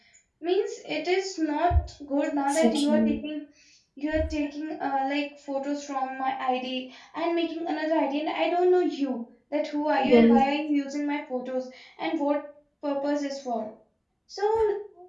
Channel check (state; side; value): identical; both; correlation 1.00